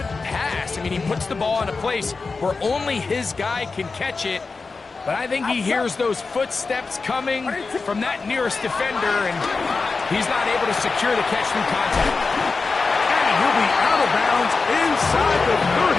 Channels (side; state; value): right; quieter; 4.3 dB